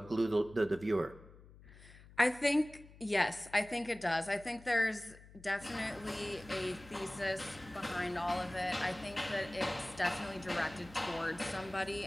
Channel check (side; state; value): left; noise; hum, 21 dB below the sound